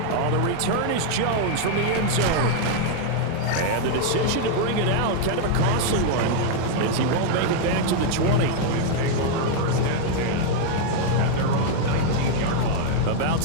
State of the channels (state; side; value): different; both; correlation 0.00